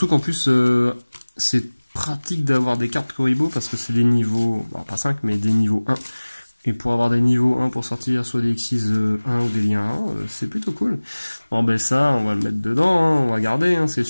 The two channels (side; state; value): both; inverted; correlation -1.00